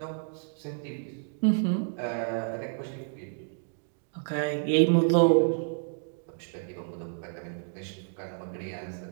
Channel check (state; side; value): silent; left; digital silence